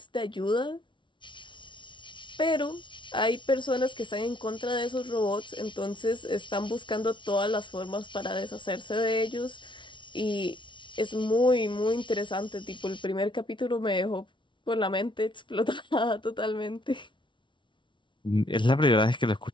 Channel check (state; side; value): late; right; 0.24 ms